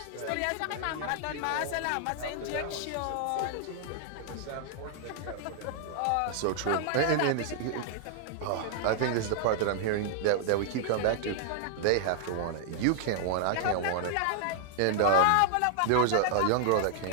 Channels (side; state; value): both; different; correlation -0.01